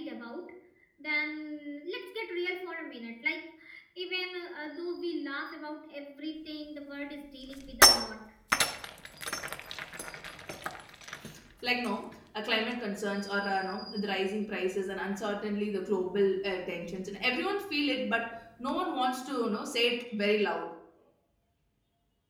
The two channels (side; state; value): both; identical; correlation 1.00